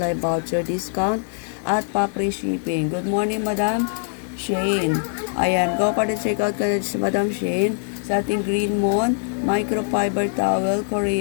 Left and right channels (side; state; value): right; silent; 64 dB below the other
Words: voucher discount at pa-free shipping. Good morning, Madam Shane. Ayan, go for the checkout ka na si Madam Shane sa ating Green Moon microfiber towel